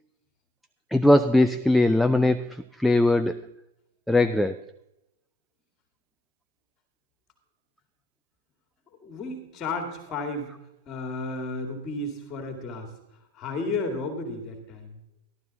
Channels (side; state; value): both; normal; correlation 0.85